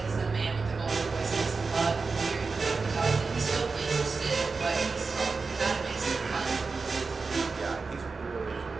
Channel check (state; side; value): quieter; left; 4.4 dB